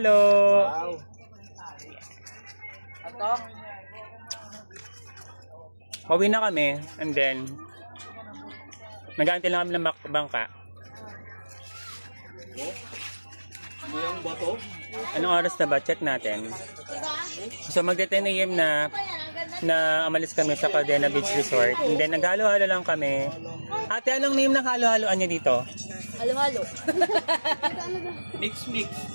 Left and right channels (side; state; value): both; inverted; correlation -1.00